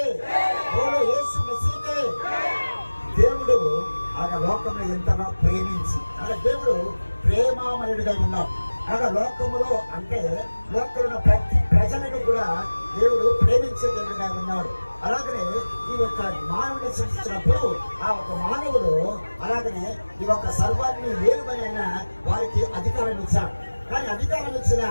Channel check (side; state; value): both; inverted; correlation -1.00